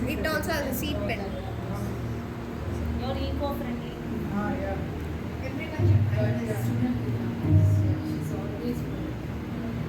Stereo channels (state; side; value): identical; both; correlation 1.00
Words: It also has a seed pen. You're eco-friendly. yeah. Everyone should try this. She's always